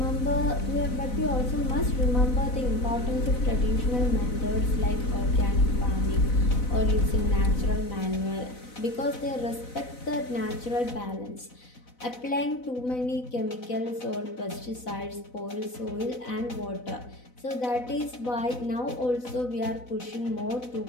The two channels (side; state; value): right; late; 4.0 ms